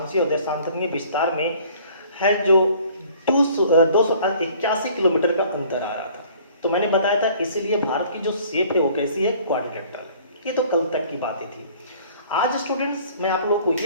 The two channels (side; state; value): both; inverted; correlation -0.53